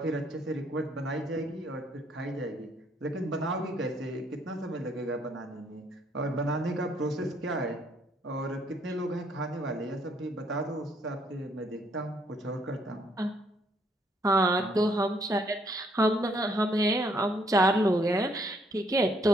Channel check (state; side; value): normal; both; correlation 0.68